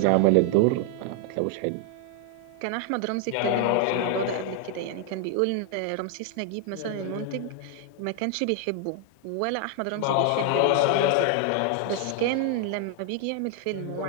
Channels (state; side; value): different; both; correlation 0.00